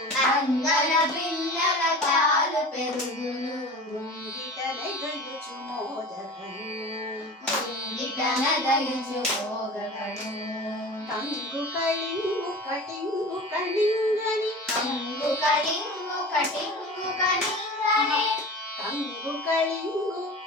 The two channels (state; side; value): normal; both; correlation 0.36